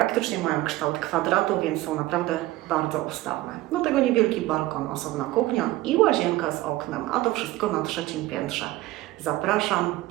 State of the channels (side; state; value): left; quieter; 17.4 dB